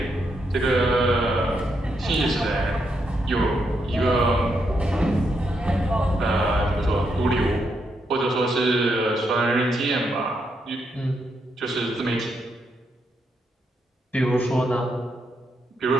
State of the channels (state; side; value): normal; both; correlation 0.80